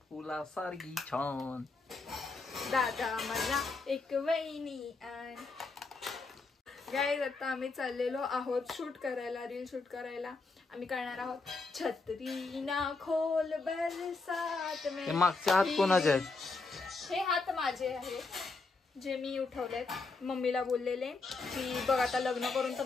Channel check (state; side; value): quieter; right; 3.9 dB